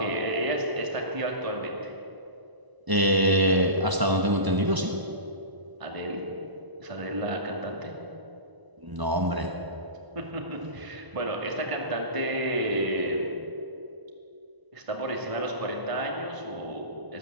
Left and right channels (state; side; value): late; left; 1.0 ms